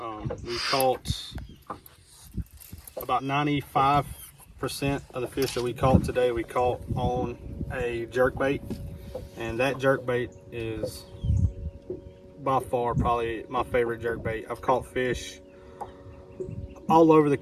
We caught about 95% of the fish that we caught today. We caught on a jerk bait. And that jerk bait is by far probably my favorite jerk bait. I've caught fish all over the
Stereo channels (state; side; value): identical; both; correlation 1.00